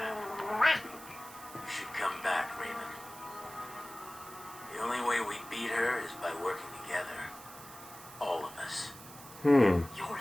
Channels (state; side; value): noise; right; hiss, 17 dB below the sound